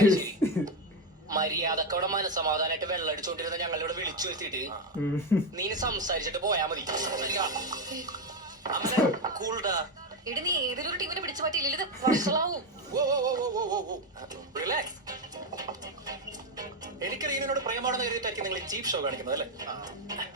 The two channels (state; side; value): normal; both; correlation 0.09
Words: മര്യാദക്കവിടെ മനസമാധാനായിട്ട് വെള്ളം അടിച്ചോണ്ടിരുന്ന ഞങ്ങളിവിടെ വിളിച്ചു വരുത്തിയിട്ട് നീ സംസാരിച്ചിട്ട് പോയാ മതി. കൂൾഡാ. എടി നീ ഏതൊരു ടീമിനെ പിടിച്ചു പറ്റിയില്ല, ഇത് വഷളാവും. റിലാക്സ്. എനിക്ക് റീനോട് പ്രേമാണെന്ന് കരുതിയിട്ടായിരിക്കും നിങ്ങൾ ചീപ്പ് ഷോ കാണിക്കുന്നത് അല്ലേ?